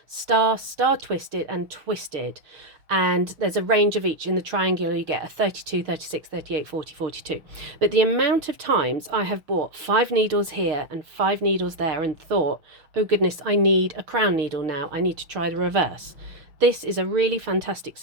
star, star twisted and twisted. And there's a range of each. In the triangular you get a 32, 36, 38, 40, 42. But the amount of times I have bought 5 needles here and 5 needles there and thought, oh goodness, I need a crown needle now, I need to try the reverse. This is a really fantastic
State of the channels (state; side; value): late; left; 6.3 ms